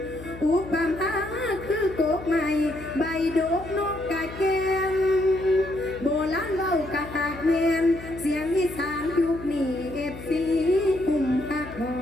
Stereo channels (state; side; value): noise; left; hum, 14 dB below the sound